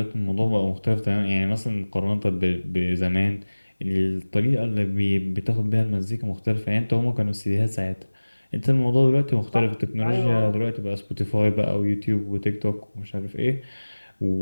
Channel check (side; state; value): both; inverted; correlation -1.00